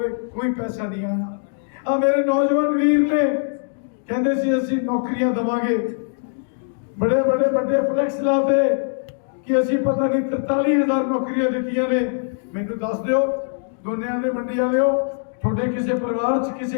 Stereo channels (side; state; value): right; silent; digital silence